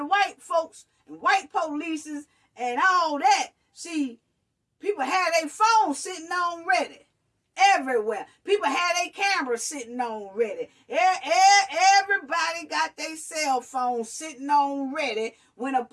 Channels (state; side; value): identical; both; correlation 1.00